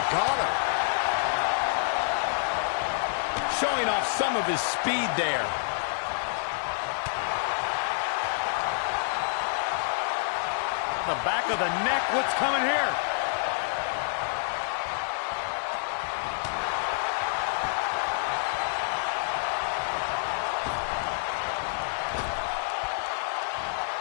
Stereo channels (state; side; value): silent; right; digital silence